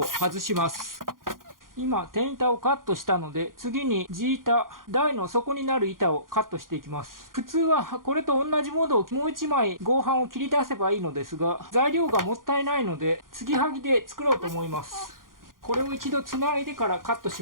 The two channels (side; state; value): left; late; 0.90 ms